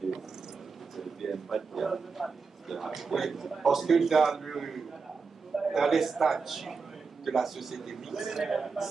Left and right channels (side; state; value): left; quieter; 4.9 dB